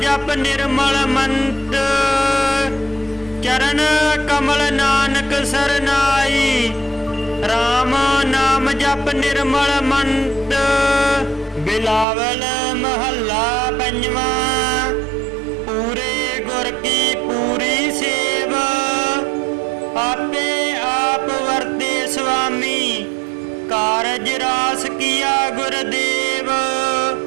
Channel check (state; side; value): drops out; left; at 12.1 s